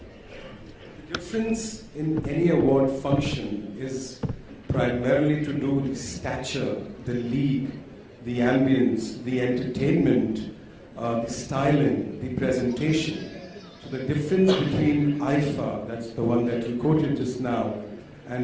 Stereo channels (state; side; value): identical; both; correlation 1.00